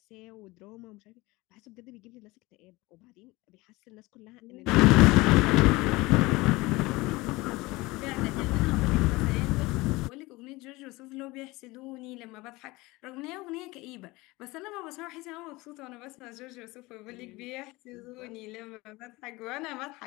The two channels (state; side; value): quieter; right; 21.7 dB